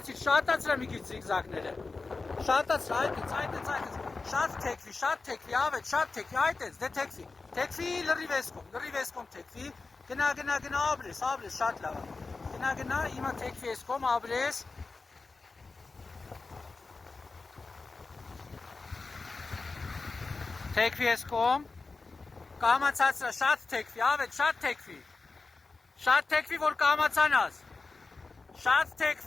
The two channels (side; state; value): right; quieter; 3.9 dB